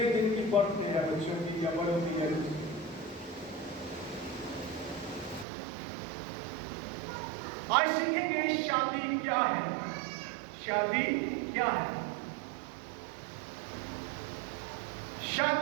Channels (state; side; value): drops out; left; at 5.5 s